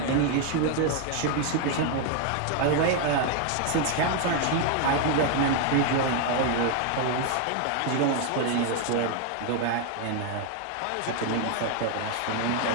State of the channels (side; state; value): both; different; correlation 0.01